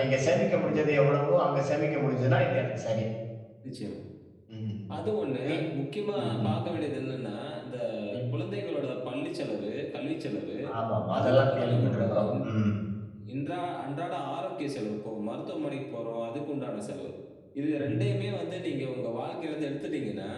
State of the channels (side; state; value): both; identical; correlation 1.00